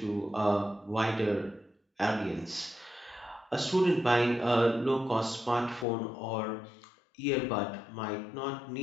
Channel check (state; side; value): drops out; right; at 5.9 s